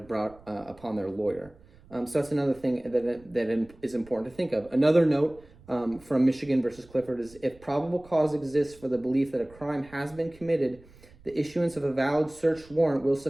brought upon their lawyer. So that's another thing that is important to think of. Another note from Michigan versus Clifford is, if probable cause exists for the belief that a crime has been committed, the issuance of a valid search warrant will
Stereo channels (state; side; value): noise; right; rumble, 25 dB below the sound